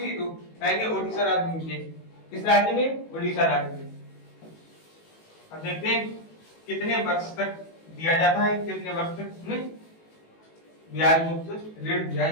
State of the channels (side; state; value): right; late; 18 ms